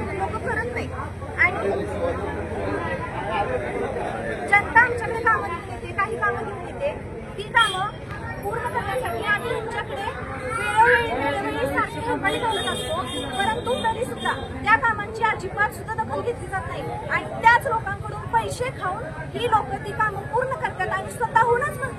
लोक करत नाही. आणि जनता आमच्याकडे कामं घेऊन येते, काही कामं घेऊन येते. ती कामं पूर्ण करण्यासाठी आम्ही तुमच्याकडे वेळोवेळी सारखी कंपनी बोलत असतो. परंतु तरी सुद्धा त्या कामांची अजिबात सुद्धा दखल घेतली जात नाही. आणि त्याच लोकांकडून पैसे खाऊन ही लोक ती कामं पूर्ण करतात आणि स्वतःहूनच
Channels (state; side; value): identical; both; correlation 1.00